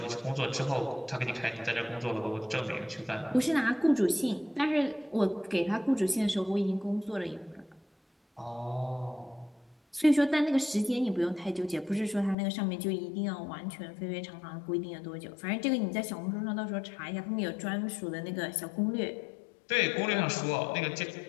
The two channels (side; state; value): right; drops out; at 12.4 s